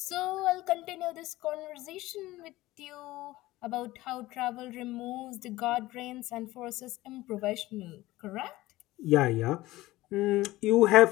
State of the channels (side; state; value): right; quieter; 17.8 dB